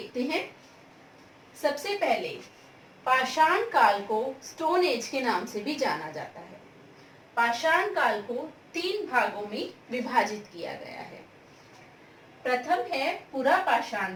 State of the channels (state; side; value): identical; both; correlation 1.00